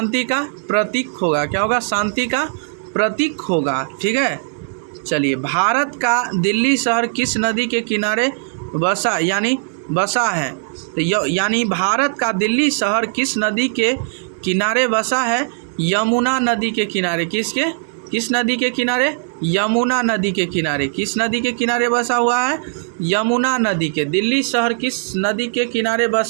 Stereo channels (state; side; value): silent; left; digital silence